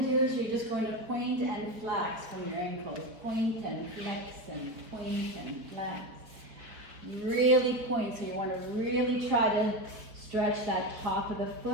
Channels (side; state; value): left; late; 4.3 ms